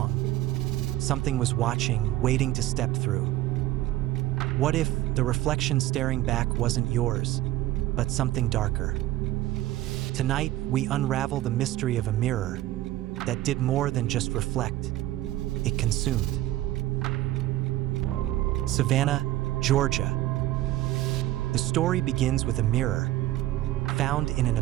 something was watching, waiting to step through? What if the reflection staring back wasn't yours, but something darker? Tonight, we unravel the mystery of a mirror that did more than just reflect, it consumed. Savannah, Georgia. The story begins with a mirror found in an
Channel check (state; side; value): quieter; left; 15.5 dB